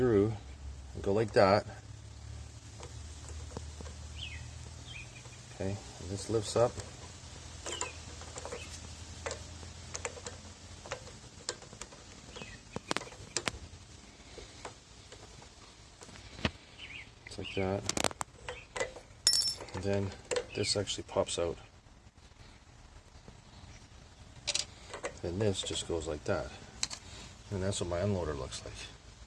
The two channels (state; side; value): identical; both; correlation 1.00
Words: and go like that. Okay, and this lifts up. It's like that. And then this actually pops out. And this just goes like that. And that's what my unloader looks like.